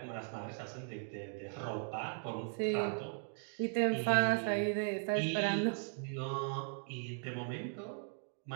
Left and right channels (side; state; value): left; silent; 52 dB below the other